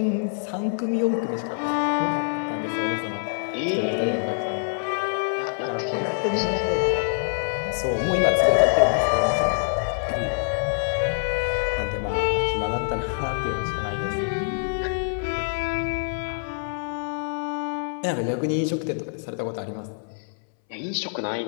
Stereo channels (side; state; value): right; silent; 62 dB below the other